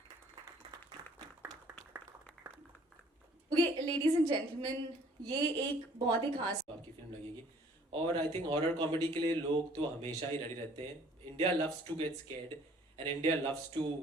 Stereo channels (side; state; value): both; normal; correlation 0.57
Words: Okay, ladies and gentlemen, ये एक बहुत ही खास आपकी film लगेगी। और I think horror comedy के लिए लोग तो हमेशा ही रेडी रहते हैं। India loves to get scared and India loves to